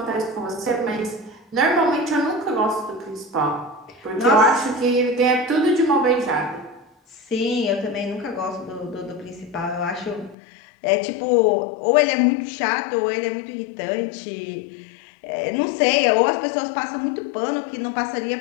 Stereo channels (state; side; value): drops out; right; at 10.4 s